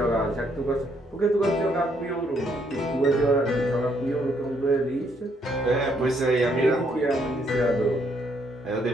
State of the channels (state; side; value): normal; both; correlation 0.71